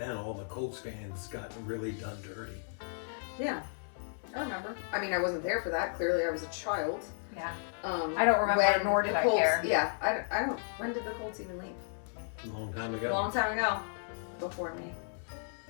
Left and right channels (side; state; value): right; silent; 55 dB below the other